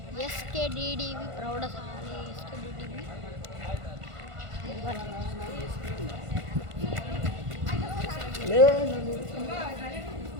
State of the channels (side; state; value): left; late; 1.5 ms